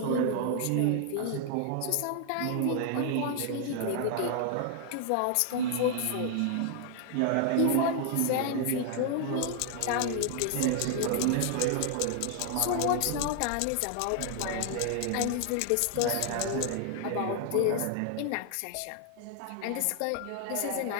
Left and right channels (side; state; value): both; different; correlation 0.00